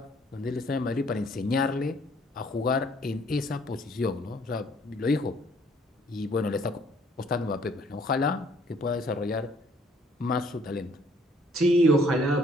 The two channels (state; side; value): normal; both; correlation 0.62